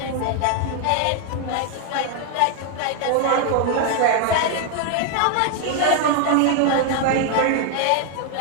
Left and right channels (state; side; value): different; both; correlation 0.00